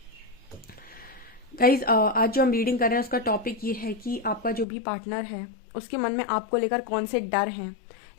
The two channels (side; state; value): right; drops out; at 4.7 s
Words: गाइस, आज जो हम रीडिंग कर रहे हैं उसका टॉपिक ये है कि आपका जो भी पार्टनर है उसके मन में आपको लेकर कौन से डर हैं,